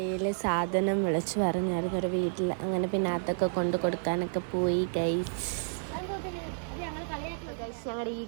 സാധനം വിളിച്ച് പറഞ്ഞായിരുന്നു ഒരു വീട്ടിൽ. അങ്ങനെ പിന്നെ അതൊക്കെ കൊണ്ട് കൊടുക്കാനൊക്കെ പോയി ഗൈസ്. ഞങ്ങളുടെ ഈ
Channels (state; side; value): silent; left; digital silence